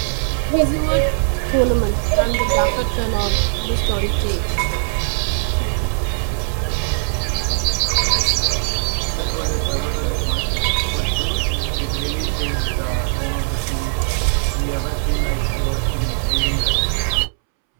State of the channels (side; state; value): left; silent; 66 dB below the other